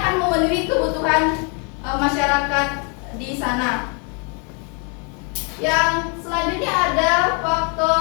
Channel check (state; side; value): quieter; right; 36.3 dB